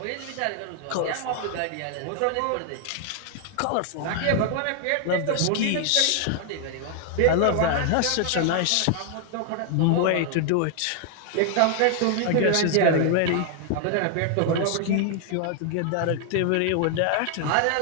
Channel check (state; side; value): different; both; correlation 0.00